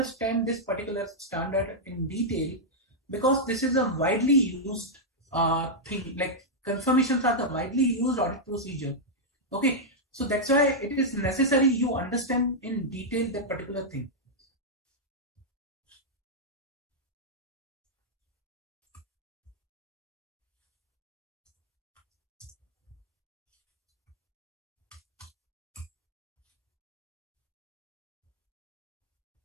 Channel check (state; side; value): normal; both; correlation -0.05